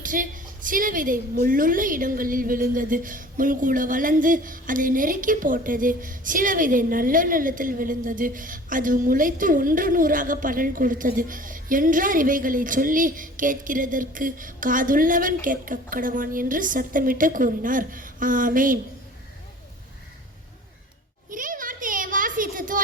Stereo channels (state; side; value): normal; both; correlation 0.45